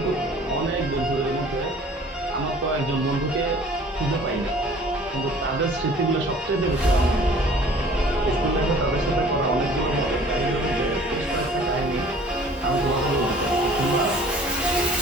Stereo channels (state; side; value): normal; both; correlation 0.50